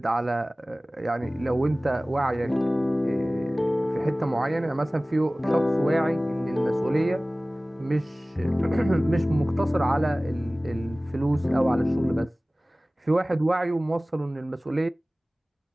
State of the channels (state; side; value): normal; both; correlation 0.98